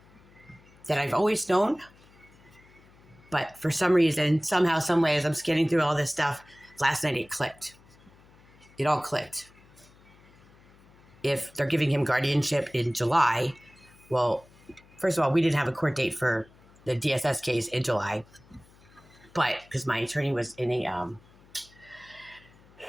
that I've always known, but for some reason, somehow, some way, as I'm scanning through all this stuff, last night it clicked. It all clicked. If they're giving him guardianship in July, well, first of all, we didn't have a court date for the DSS case in July, but because my attorney was in he had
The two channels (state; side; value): noise; left; hum, 27 dB below the sound